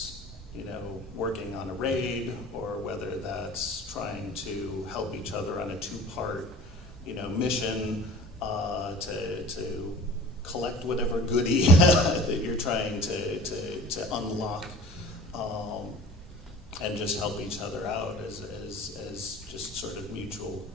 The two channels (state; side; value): normal; both; correlation 0.43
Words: you know, working on a raid, or whether that's trying to help each other on a two-part, you know, mission to collect whatever goodie that you're trying to unlock, and just help each other out as just sort of mutual